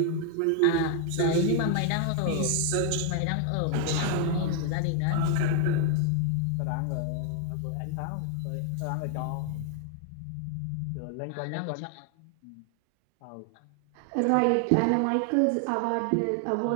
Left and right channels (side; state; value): both; different; correlation 0.00